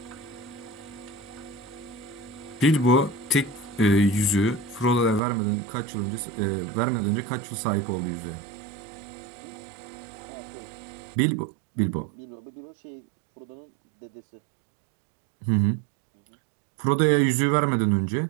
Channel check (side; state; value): left; drops out; at 5.2 s